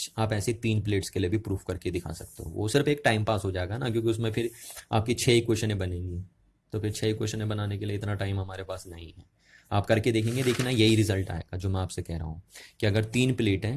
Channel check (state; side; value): identical; both; correlation 1.00